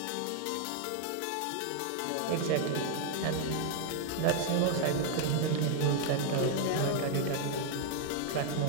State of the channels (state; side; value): different; both; correlation 0.00